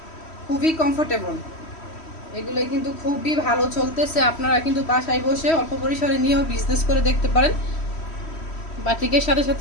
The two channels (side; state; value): right; late; 3.1 ms